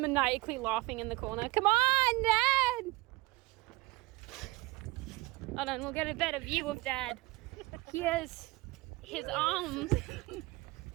laughing in the corner. Come on, Dad! Hold on, we'll get a better view of Dad. Here's his arms.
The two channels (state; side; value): quieter; left; 21.8 dB